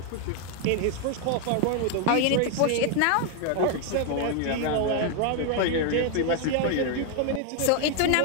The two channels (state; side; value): different; both; correlation 0.01